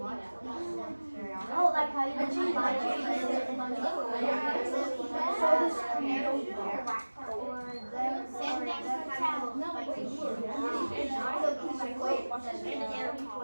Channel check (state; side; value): inverted; both; correlation -1.00